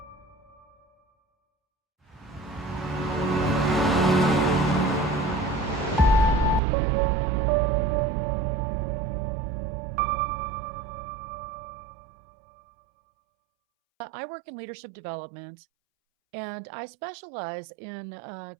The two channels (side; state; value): left; drops out; at 6.6 s